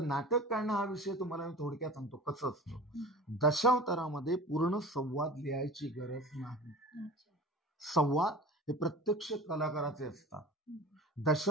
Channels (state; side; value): normal; both; correlation 0.37